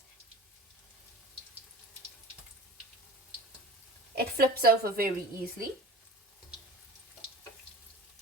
It flips over very easily.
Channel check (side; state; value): both; normal; correlation 0.37